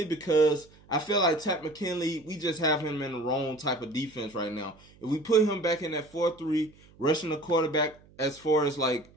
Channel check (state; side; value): noise; right; hum, 26 dB below the sound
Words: because I feel like Takk McKinley, we just have him in the wrong type of defense right now. If we put him back in that 4-3, rushing the quarterback as far as like